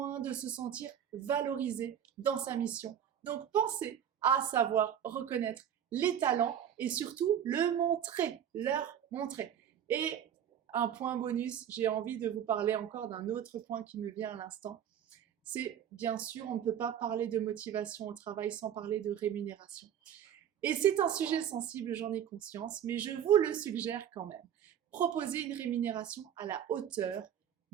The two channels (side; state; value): left; quieter; 9.4 dB